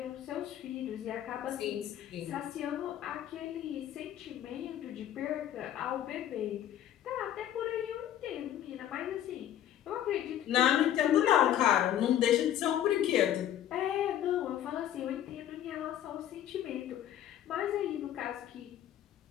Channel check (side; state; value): right; quieter; 11.3 dB